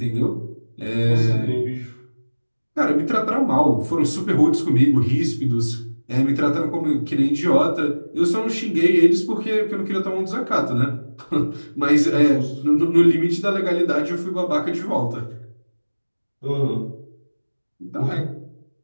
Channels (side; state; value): both; inverted; correlation -1.00